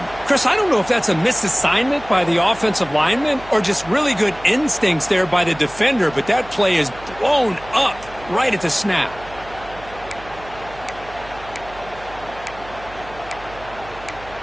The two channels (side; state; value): right; noise; hum, 18 dB below the sound